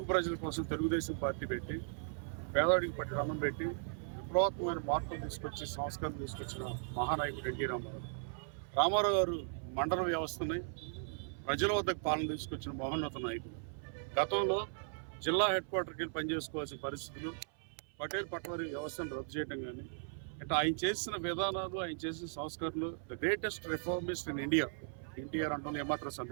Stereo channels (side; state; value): left; silent; 53 dB below the other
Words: ప్రజల కోసం తెలుగుదేశం పార్టీ పెట్టి పేదవాడికి పట్టి అన్నం పెట్టి విప్లవాత్మకమైన మార్పులు తీసుకొచ్చి సంస్కారం తీసుకొచ్చిన మహానాయకుడు ఎన్టీ రామారావు. రామారావు గారు మండల వ్యవస్థని ప్రజల వద్దకు పాలన తీసుకొచ్చిన మహోన్నత నాయకుడు. గతంలో జిల్లా హెడ్ క్వార్టర్కి వెళ్ళి పనిచేసుకోవాల్సిన పరిస్థితులు, పటేల్ పట్వారీ వ్యవస్థను రద్దు చేయడం కానీ, అంటే ఆయన చేసిన విధానాలు, ఆయన చేసిన సంస్కరణలు the greatest reformist in India NTR అంటాం ఏమాత్రం